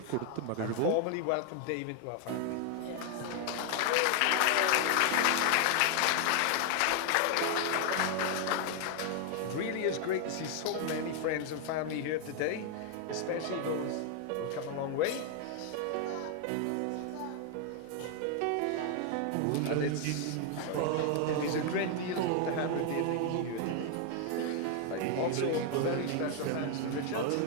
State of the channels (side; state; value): both; different; correlation 0.00